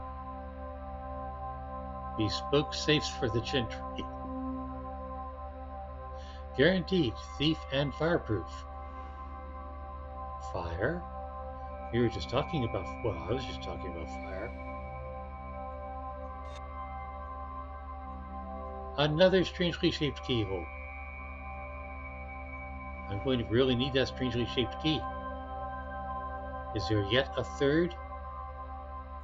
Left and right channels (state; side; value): identical; both; correlation 1.00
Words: Bespoke safes for the gentry. Guaranteed thief and fireproof. Fire? We were just talking about, well, I was just talking about fire. Another strangely shaped keyhole. I'm going to really need that strangely shaped key. Is there yet a third